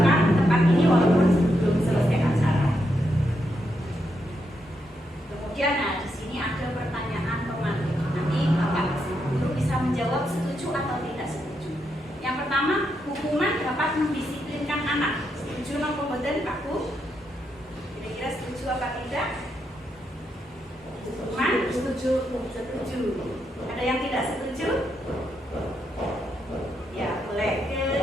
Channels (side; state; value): both; normal; correlation 0.81